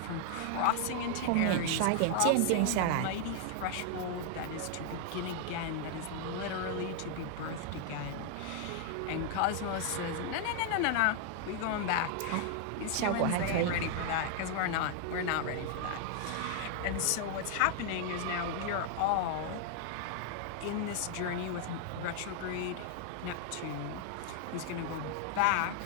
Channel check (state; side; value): different; both; correlation 0.00